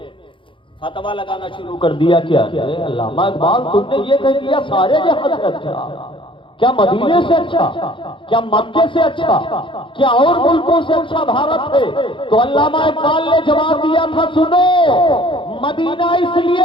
فتویٰ لگانا شروع کر دیا کہ علامہ اقبال تم نے یہ کہہ دیا سارے جہاں سے اچھا، کیا مدینے سے اچھا، کیا مکے سے اچھا، کیا اور ملکوں سے اچھا بھارت ہے؟ تو علامہ اقبال نے جواب دیا تھا سنو، مدینہ اس لیے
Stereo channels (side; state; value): right; late; 0.25 ms